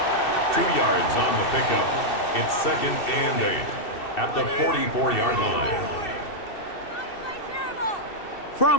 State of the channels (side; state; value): right; late; 2.7 ms